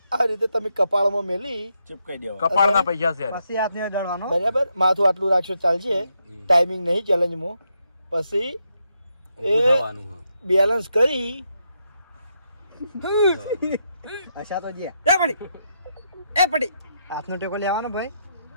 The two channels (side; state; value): both; inverted; correlation -0.81